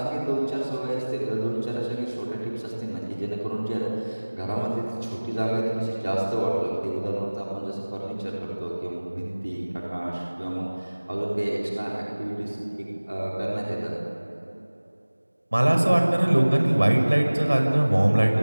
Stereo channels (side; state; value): both; inverted; correlation -1.00